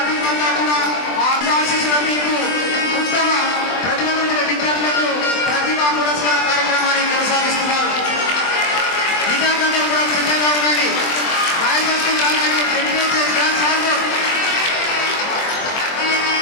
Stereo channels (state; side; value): late; right; 23 ms